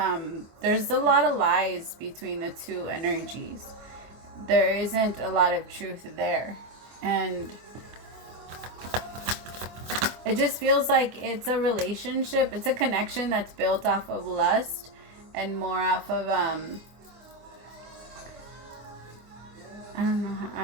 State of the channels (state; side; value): late; left; 24 ms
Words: there's a lot of lies between the two energies. There isn't a lot of truth there. And it just feels like it's a relationship. It's a connection that's built off of lust and more off of, I don't know.